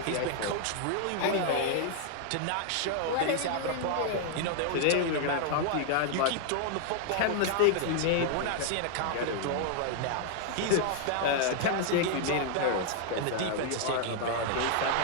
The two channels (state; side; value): different; both; correlation 0.00